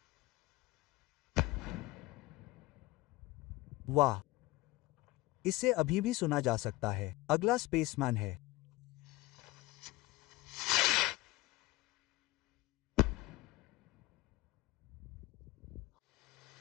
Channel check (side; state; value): right; quieter; 19.7 dB